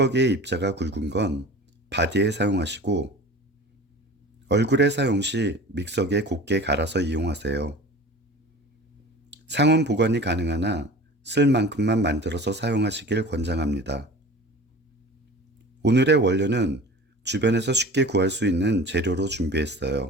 입자가 굵은 건 바디에 사용하시고 얼굴에 사용 시 믹서기에 곱게 갈아서 이용하세요. 상온 보관이 가능하나 쓸 만큼만 만들어서 사용하시길 권장합니다. 오늘의 원료는 주변에서 쉽게 구할 수 있는 재료로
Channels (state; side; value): normal; both; correlation 0.39